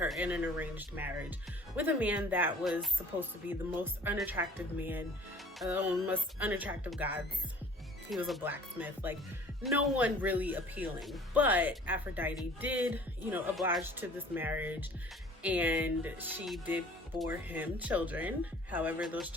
in an arranged marriage with a man that was supposed to be the most unattractive man, most unattractive gods. He was a blacksmith, like no one really appealing. But Aphrodite did, oblige to this marriage, and she did bore him children. However, those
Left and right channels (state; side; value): normal; both; correlation 0.51